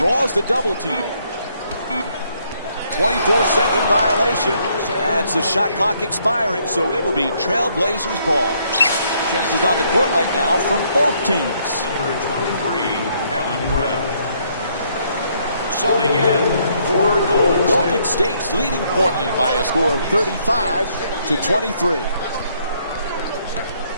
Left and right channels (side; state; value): both; inverted; correlation -0.69